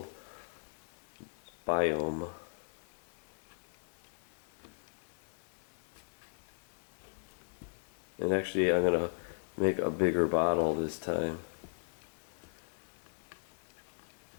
biome. And actually I'm going to make a bigger bottle this time.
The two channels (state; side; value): silent; right; digital silence